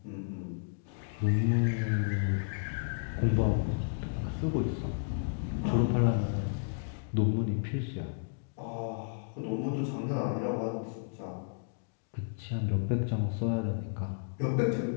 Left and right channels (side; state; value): right; silent; digital silence